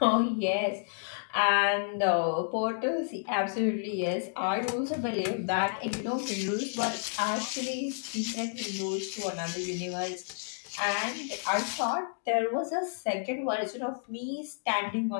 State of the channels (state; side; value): silent; right; digital silence